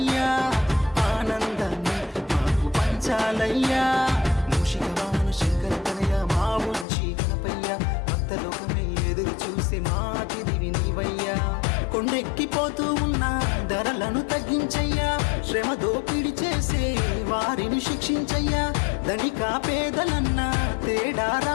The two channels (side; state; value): right; drops out; at 6.9 s